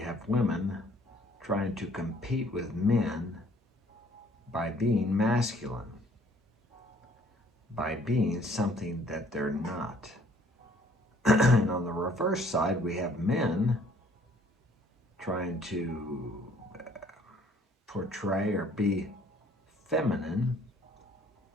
women trying to compete with men by being masculine, by being something that they're not. And on the reverse side, we have men trying to portray or be feminine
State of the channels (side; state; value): both; normal; correlation 0.59